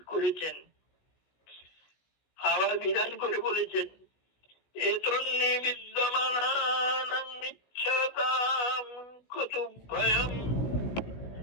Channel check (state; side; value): late; right; 17 ms